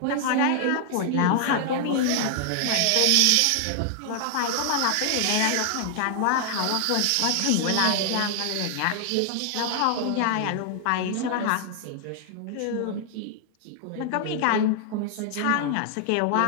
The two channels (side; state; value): both; different; correlation 0.00